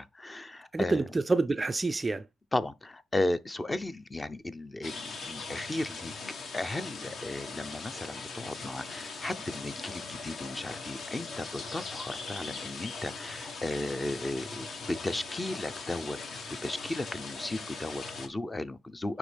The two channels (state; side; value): normal; both; correlation 0.91